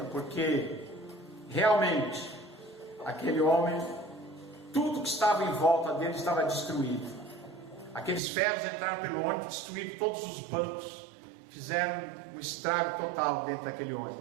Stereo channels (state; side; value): drops out; left; at 8.2 s